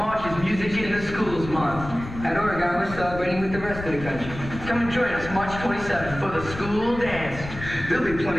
is Music in the Schools Month. At Oregon, we're celebrating with the rest of the country. Come and join us March 27th for the school dance. There'll be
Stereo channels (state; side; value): noise; left; rumble, 11 dB below the sound